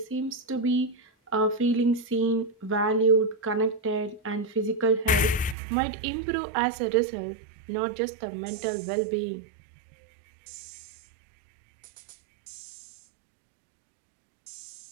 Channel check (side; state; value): left; drops out; at 5.6 s